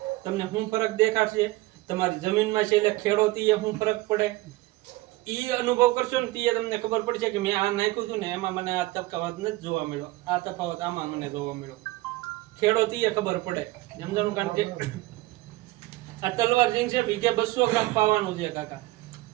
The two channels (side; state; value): left; quieter; 19.2 dB